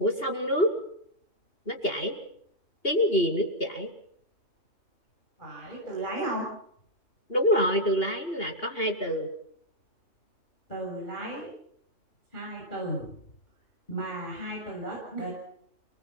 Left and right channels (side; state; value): right; late; 2.8 ms